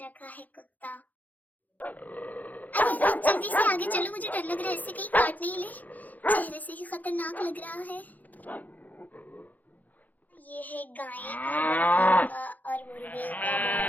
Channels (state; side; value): late; right; 0.081 ms